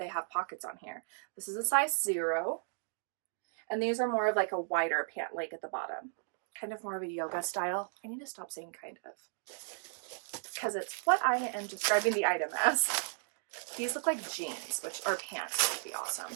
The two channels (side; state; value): left; silent; digital silence